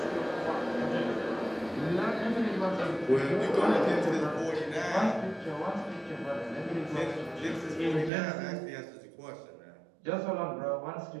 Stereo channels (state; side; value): drops out; left; at 8.1 s